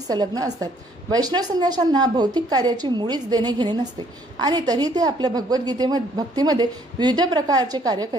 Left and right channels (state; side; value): normal; both; correlation 0.63